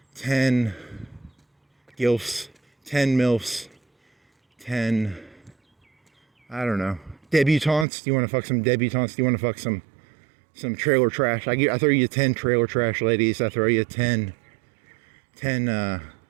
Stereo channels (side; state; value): left; drops out; at 7.9 s